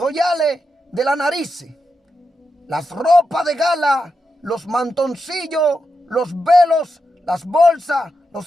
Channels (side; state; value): both; normal; correlation 0.86